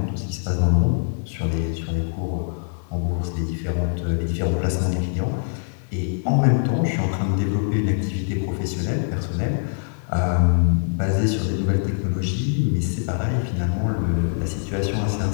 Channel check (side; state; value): right; silent; 63 dB below the other